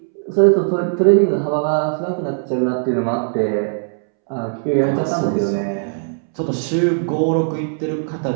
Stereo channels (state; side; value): silent; left; 67 dB below the other